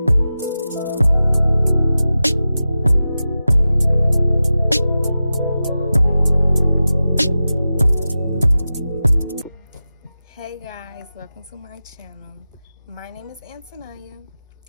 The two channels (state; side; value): inverted; both; correlation -0.93